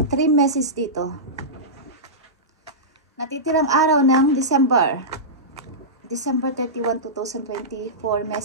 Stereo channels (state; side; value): normal; both; correlation -0.16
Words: 3 messages dito. Natitirang araw ng December 31, 2024,